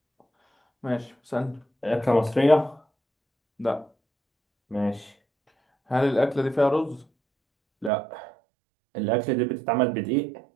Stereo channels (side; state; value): left; drops out; at 7.9 s